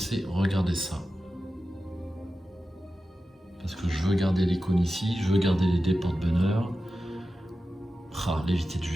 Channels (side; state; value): both; normal; correlation 0.93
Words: regardez ça. Parce que je veux garder l'icône ici, je veux garder les dés porte-bonheur. Ah, l'évité de